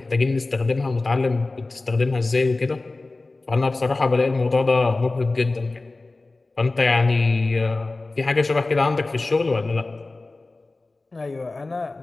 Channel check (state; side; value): quieter; right; 3.3 dB